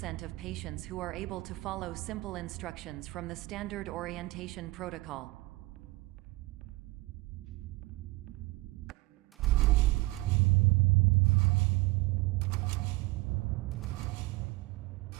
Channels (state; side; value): quieter; left; 22.1 dB